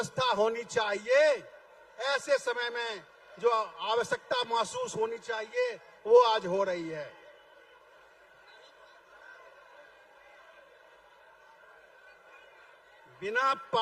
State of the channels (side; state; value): both; identical; correlation 1.00